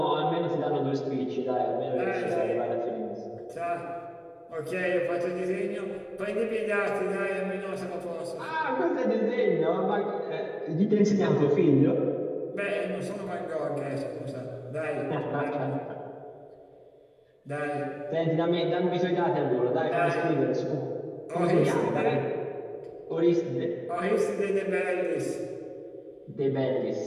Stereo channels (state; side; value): identical; both; correlation 1.00